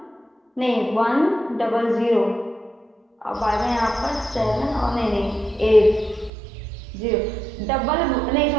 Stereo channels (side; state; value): left; drops out; at 6.3 s